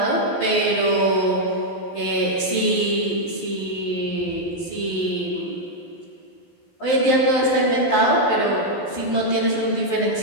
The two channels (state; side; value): late; right; 12 ms